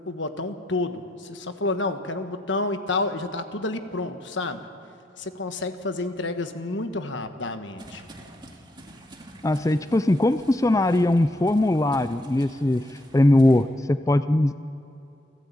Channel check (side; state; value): both; normal; correlation 0.76